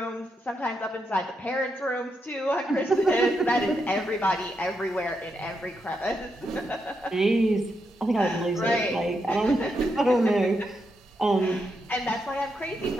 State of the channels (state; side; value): normal; both; correlation 0.83